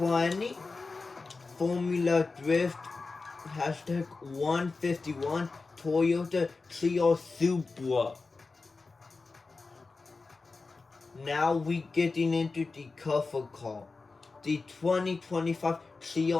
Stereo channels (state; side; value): quieter; right; 4.0 dB